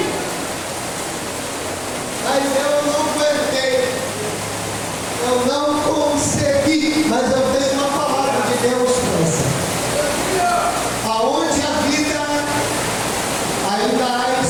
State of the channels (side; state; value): both; identical; correlation 1.00